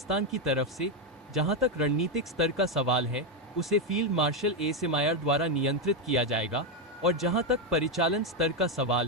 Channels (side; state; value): both; normal; correlation 0.05